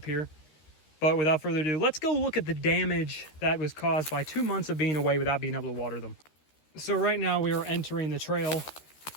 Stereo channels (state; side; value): late; right; 13 ms